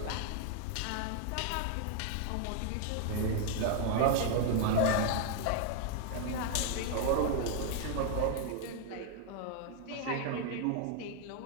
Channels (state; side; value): different; both; correlation 0.00